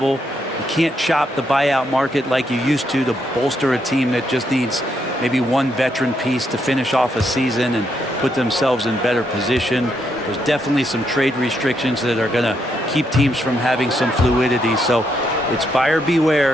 You can't shop the buyout market like you used to bolster a team that just needs maybe one veteran piece to finish off a season and put themselves in better position. There's definitely some trade restrictions that are going to keep teams from having some fluidity. So it's buyer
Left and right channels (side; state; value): both; normal; correlation 0.77